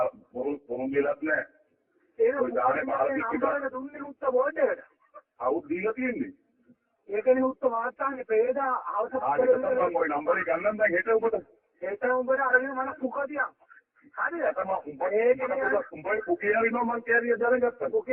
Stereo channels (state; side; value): identical; both; correlation 1.00